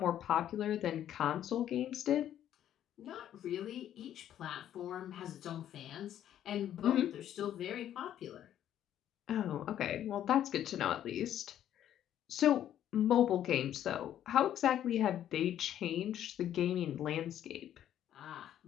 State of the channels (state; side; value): quieter; right; 11.0 dB